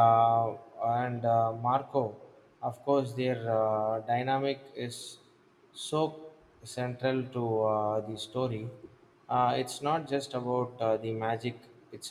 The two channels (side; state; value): both; identical; correlation 1.00